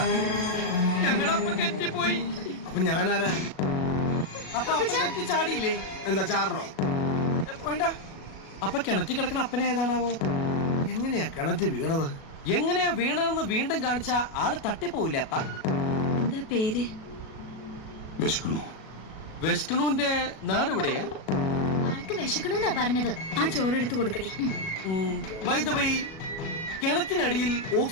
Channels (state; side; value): late; right; 37 ms